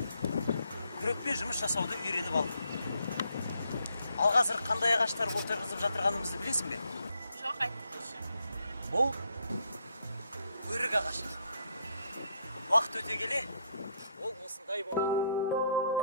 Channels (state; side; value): inverted; both; correlation -0.73